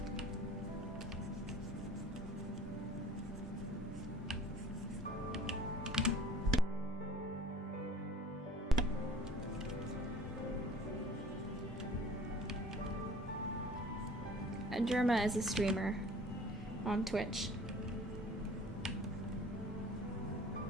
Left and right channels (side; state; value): both; normal; correlation 0.49